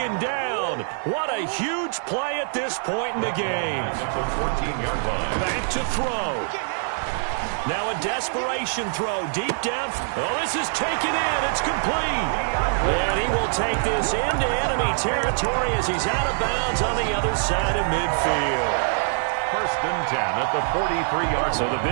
down. What a huge play at this point in the game. At the 14-yard line. Back to throw. Now a desperation throw deep down. Oh, this is taken in. It's complete. And he will take this into enemy territory as he's out of bounds on the other side of midfield. 1st and 10 at the 43-yard line. So the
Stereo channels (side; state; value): left; silent; 62 dB below the other